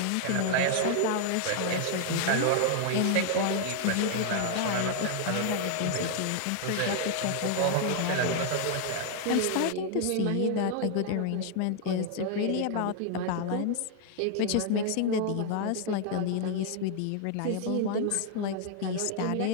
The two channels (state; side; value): different; both; correlation 0.00